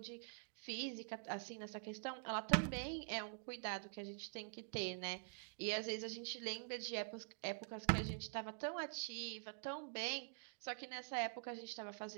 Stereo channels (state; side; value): silent; left; digital silence